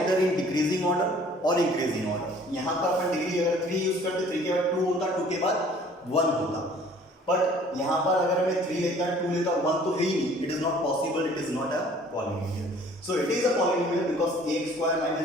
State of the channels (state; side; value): normal; both; correlation 0.53